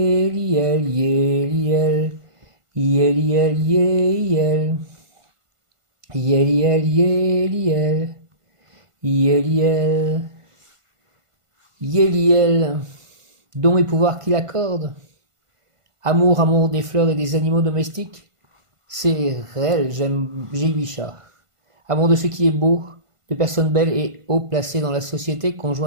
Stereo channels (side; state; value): left; late; 1.5 ms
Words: Yéliel, Yéliel, Yéliel, Yéliel, Yéliel, Yéliel, dons et pouvoirs qu'il accorde. Amour, amour des fleurs et des animaux domestiques, c'est réel, j'ai 8 chats. Amour de ce qui est beau, de personnes belles et haut placées dans la société,